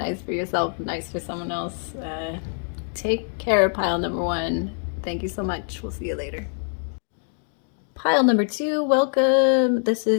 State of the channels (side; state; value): right; silent; 62 dB below the other